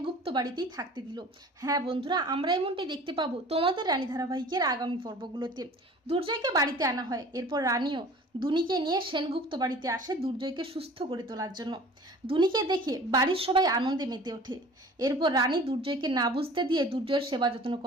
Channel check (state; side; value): normal; both; correlation 0.45